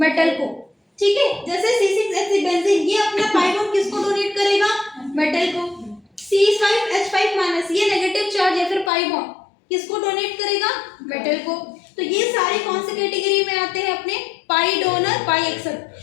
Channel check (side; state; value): right; drops out; at 8.9 s